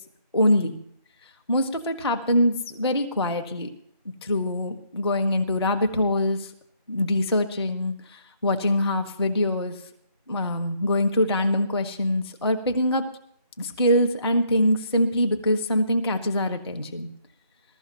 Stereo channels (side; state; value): both; inverted; correlation -0.70